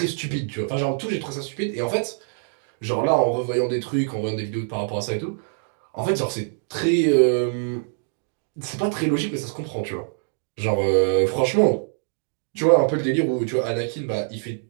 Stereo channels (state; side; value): silent; left; digital silence